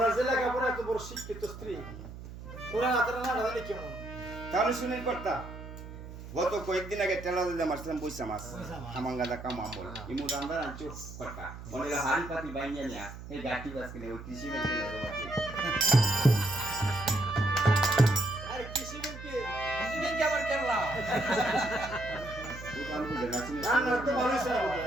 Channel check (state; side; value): noise; right; hum, 12 dB below the sound